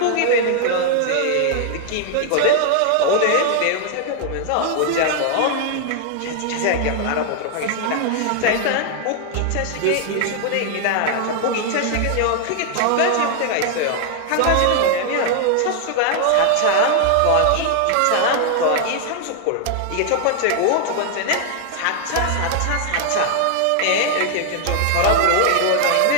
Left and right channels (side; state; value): both; different; correlation 0.00